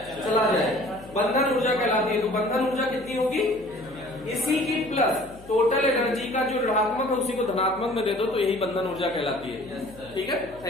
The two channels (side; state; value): left; noise; hum, 22 dB below the sound